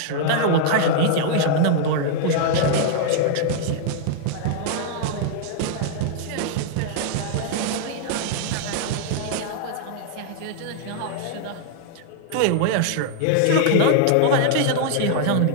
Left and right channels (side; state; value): both; different; correlation 0.00